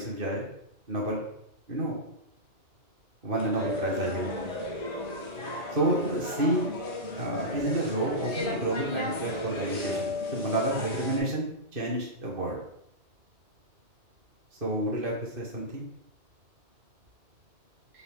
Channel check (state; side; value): late; left; 2.5 ms